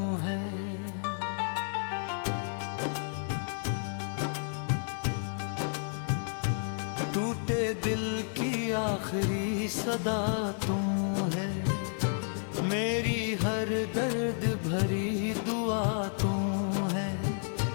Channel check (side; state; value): right; silent; 57 dB below the other